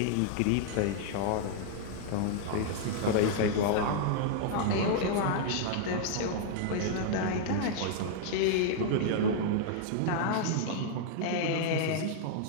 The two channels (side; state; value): both; different; correlation -0.01